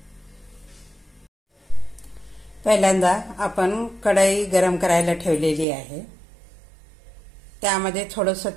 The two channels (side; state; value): left; drops out; at 5.7 s